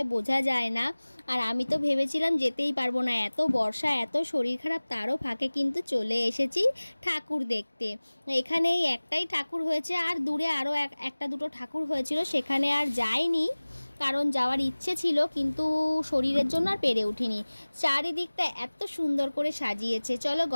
বোঝা যায় না। আর আমি তো ভেবেছিলাম যেতেই পারবো না, এত বর্ষা, এত শরীর খারাপ, তারও ফাঁকে কিন্তু চলে এসেছি ঠাকুর দেখতে। এখানেই একটাই ঠাকুর হয়েছে, আর দূরে আরও একটা দুটো ঠাকুর হয়েছিল, সেখানে আর যাইনি, কারণ যাওয়ার ইচ্ছে ছিল কিন্তু শরীরের জন্য আর পেরে উঠিনি। চারিদিকটা এত সুন্দর করে সাজিয়েছে। চলো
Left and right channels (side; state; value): both; inverted; correlation -1.00